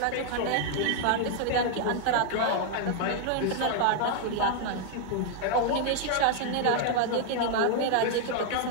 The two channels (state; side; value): different; both; correlation 0.00